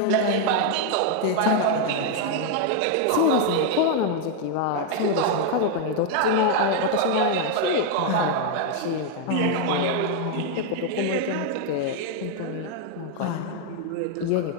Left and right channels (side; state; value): both; different; correlation 0.00